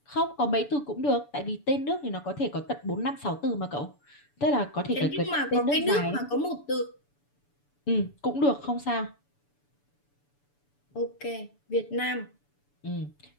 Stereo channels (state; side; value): late; right; 6.9 ms